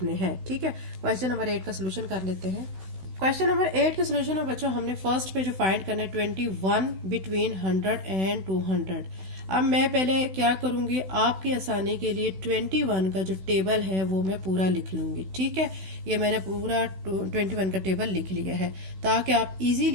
हैं। ठीक है, क्वेश्चन नंबर 8 का सोल्यूशन कर लेते हैं। क्वेश्चन नंबर 8 के सोल्यूशन में बच्चों हमने फर्स्ट पे जो फाइंड करना है 21 बिटवीन 100 एंड 200। अब मैं पहले क्या करूंगी, आपकी आसानी के लिए 21 का जो टेबल है वो मैं पूरा लिख लूंगी। ठीक है, ये मैंने पूरा 21 का टेबल लिख लिया है ताकि आप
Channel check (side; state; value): left; late; 16 ms